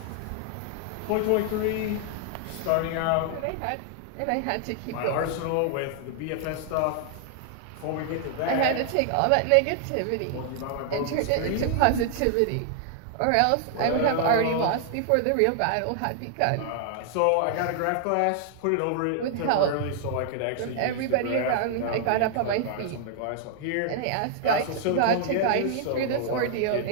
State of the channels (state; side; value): different; both; correlation -0.01